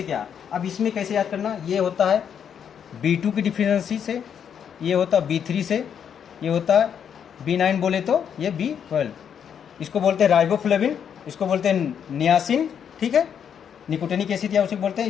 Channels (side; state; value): right; quieter; 8.1 dB